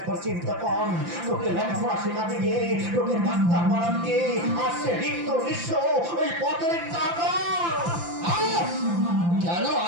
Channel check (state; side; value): late; left; 5.9 ms